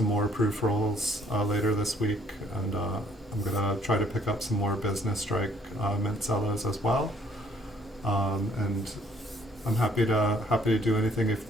more proof rolls later this week, and I'm gonna try to pick up some more Business Strike Mint Cellos as well. And I'm happy to do anything. If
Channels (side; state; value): both; normal; correlation 0.63